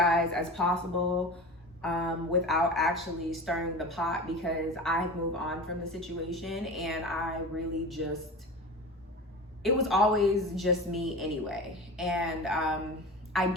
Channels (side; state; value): both; normal; correlation 0.31